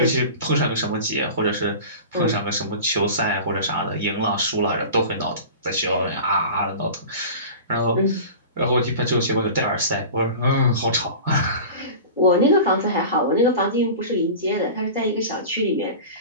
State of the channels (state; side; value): inverted; both; correlation -0.35